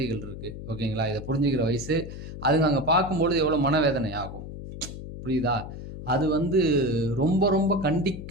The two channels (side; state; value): left; noise; hum, 10 dB below the sound